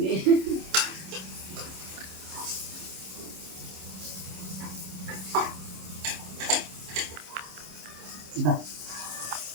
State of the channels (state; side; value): late; left; 26 ms